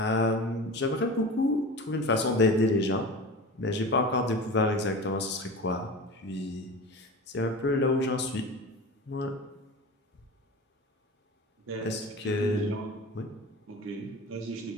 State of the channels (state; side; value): normal; both; correlation 0.32